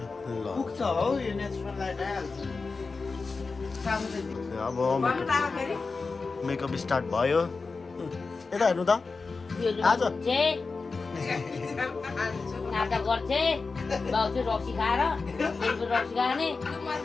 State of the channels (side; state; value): right; quieter; 4.2 dB